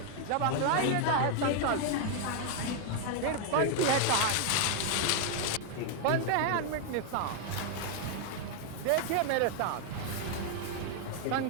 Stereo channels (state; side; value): different; both; correlation 0.00